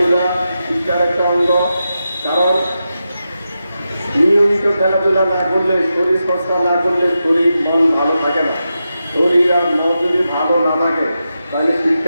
শিক্ষার একটা অঙ্গ, কারণ নিয়মিত খেলাধুলা না করলে, শরীর চর্চা না করলে শরীর মন ভালো থাকে না। শরীর আর মন যদি ভালো না থাকে তাহলে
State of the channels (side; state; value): both; inverted; correlation -0.89